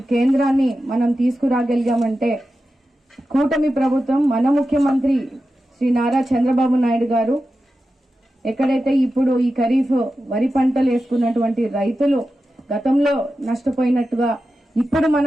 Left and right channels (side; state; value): both; normal; correlation 0.92